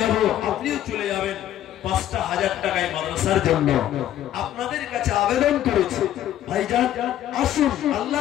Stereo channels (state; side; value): quieter; right; 12.1 dB